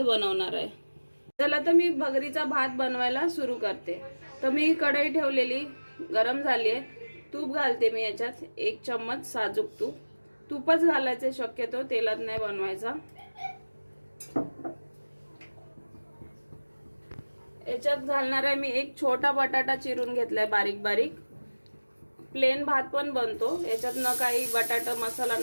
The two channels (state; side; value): inverted; both; correlation -1.00